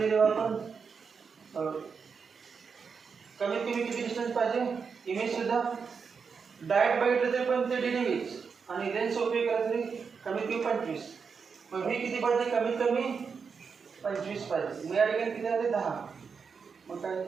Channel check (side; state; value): left; quieter; 5.7 dB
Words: आपण कमीत कमी किती डिस्टन्स पाहिजे इमेज सुद्धा डायरेक्ट बघितलं तरी पण ते DDV आणि लेन्स उपयोग केला तरी कमीत कमी 25 मग v किती पाहिजे कमीत कमी 25 पाहिजे मग या ठिकाणी किती आले 10 मग काय